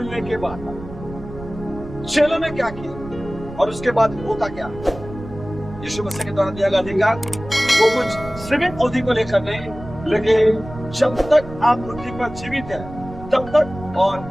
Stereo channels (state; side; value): noise; right; rumble, 13 dB below the sound